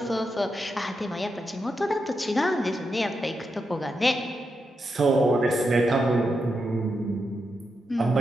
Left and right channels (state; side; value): normal; both; correlation 0.85